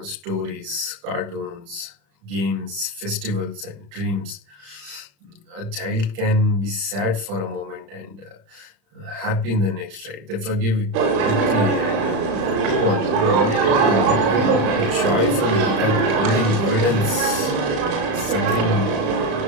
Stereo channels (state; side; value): late; left; 35 ms